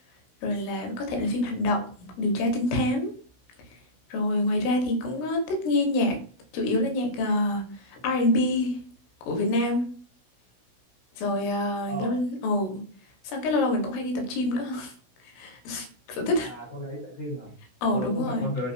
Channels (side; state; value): right; late; 16 ms